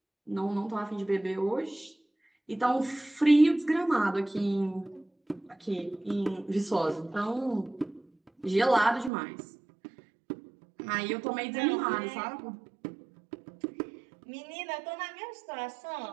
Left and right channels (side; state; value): left; drops out; at 9.1 s